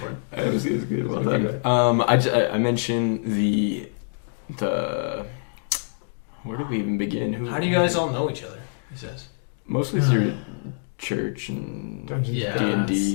It was good. Well Okay. done. I mentioned the where did we even begin? How do you guys all know each other? He says. Mostly through church and Dungeons Yeah,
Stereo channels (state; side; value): silent; right; digital silence